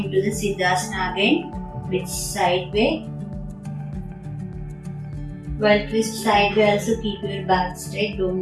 to the Siddhasana again with side way. While twist side way, also keep your back straight,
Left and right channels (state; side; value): identical; both; correlation 1.00